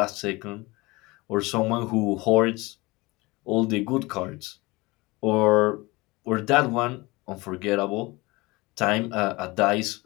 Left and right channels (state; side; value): quieter; right; 22.9 dB